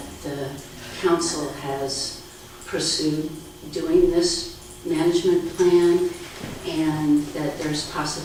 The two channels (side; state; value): both; identical; correlation 1.00